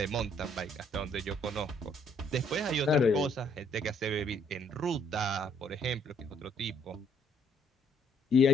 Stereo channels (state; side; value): normal; both; correlation 0.67